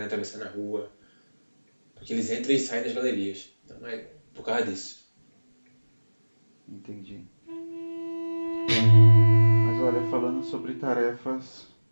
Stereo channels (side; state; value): both; inverted; correlation -1.00